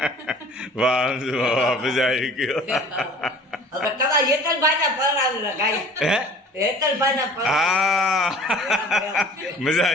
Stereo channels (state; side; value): normal; both; correlation 0.47